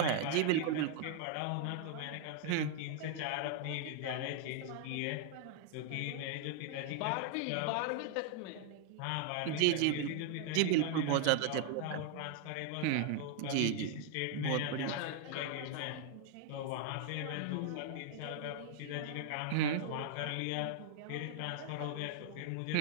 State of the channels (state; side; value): different; both; correlation 0.00